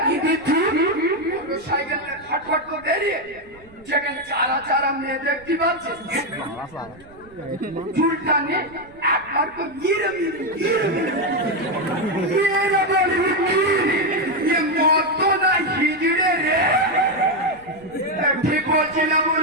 সাইকেল ফটফট করে বেরিয়ে যেখানে চারা চারা মেয়ে দেখতে পাচ্ছে চুলটা নিয়ে একবার তো গিরে মত না হিজড়ে রে ঠিক বলছি না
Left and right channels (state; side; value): noise; right; rumble, 25 dB below the sound